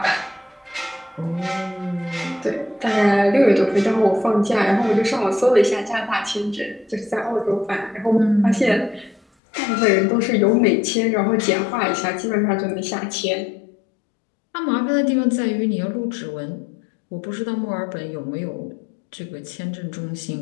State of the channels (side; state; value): right; drops out; at 9.2 s